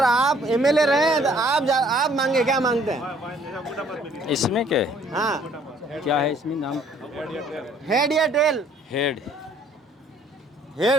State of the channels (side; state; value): both; normal; correlation 0.60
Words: आप एमएलए रहे हैं तो आप मांगे, क्या मांगते हैं इसमें क्या? हाँ क्या है इसमें नाम? हेड या टेल? हेड